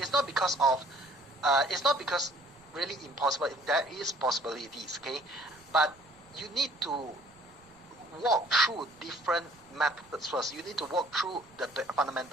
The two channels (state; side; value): noise; right; rumble, 29 dB below the sound